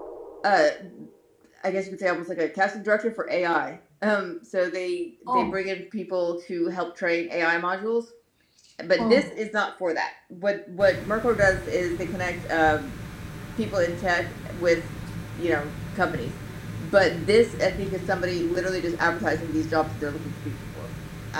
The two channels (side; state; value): both; identical; correlation 1.00